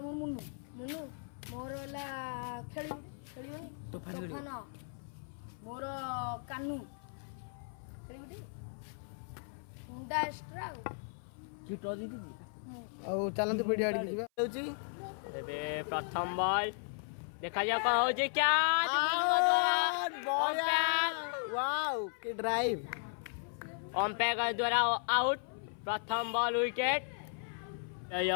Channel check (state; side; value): silent; right; 54 dB below the other